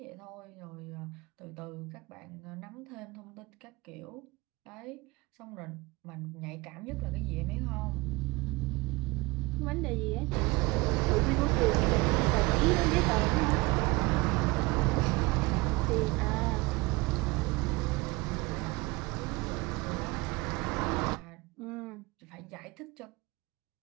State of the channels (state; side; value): quieter; left; 23.4 dB